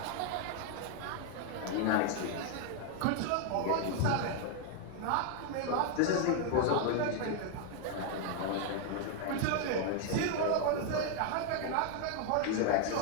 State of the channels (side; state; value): both; different; correlation 0.00